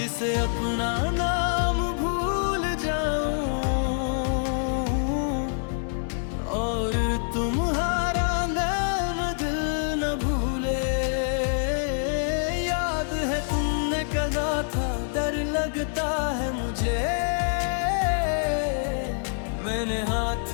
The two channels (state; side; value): silent; right; digital silence